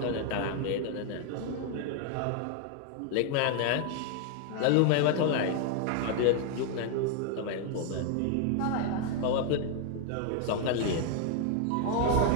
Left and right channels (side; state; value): both; different; correlation 0.00